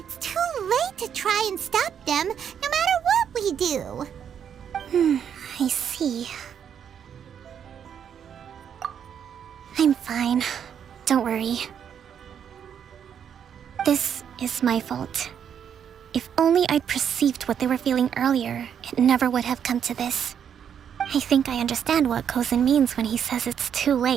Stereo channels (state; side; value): quieter; left; 8.3 dB